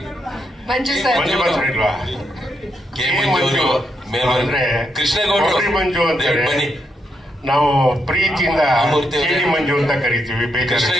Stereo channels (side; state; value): both; normal; correlation 0.80